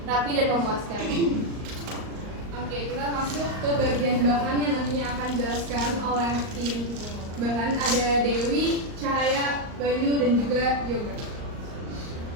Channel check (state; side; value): late; left; 38 ms